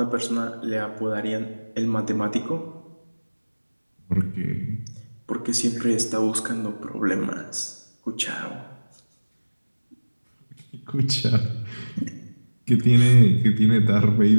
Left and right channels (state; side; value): inverted; both; correlation -1.00